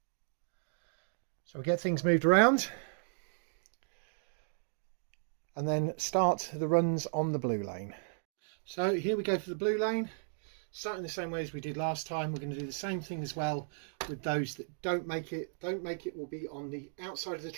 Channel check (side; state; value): left; silent; digital silence